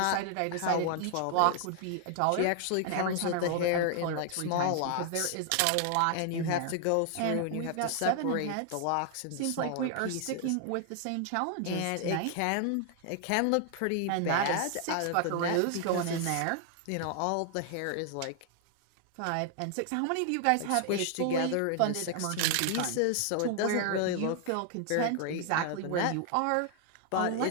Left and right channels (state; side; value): different; both; correlation 0.00